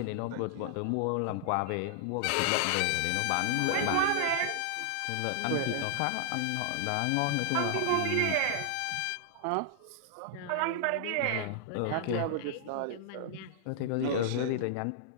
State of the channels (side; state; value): both; different; correlation -0.01